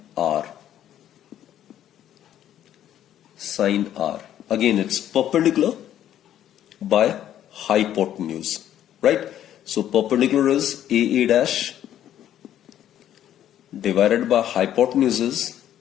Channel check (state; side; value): quieter; right; 11.2 dB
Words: R. Sine R. Again, it's perpendicular by hypotenuse. Right? So perpendicular is AA dash divided by hypotenuse is